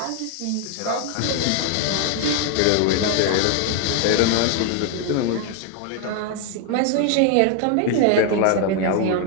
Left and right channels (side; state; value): both; different; correlation 0.00